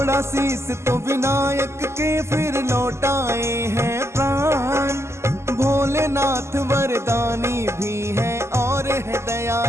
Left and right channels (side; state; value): left; late; 0.13 ms